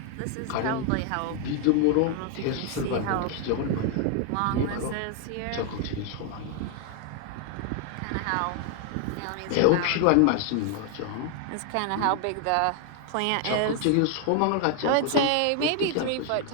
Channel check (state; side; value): different; both; correlation 0.00